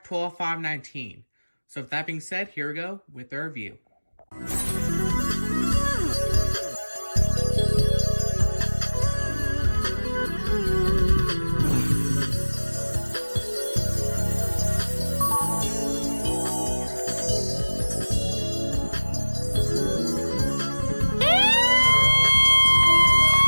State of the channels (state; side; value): inverted; both; correlation -1.00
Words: 12519. So with that being said, here we go with the review.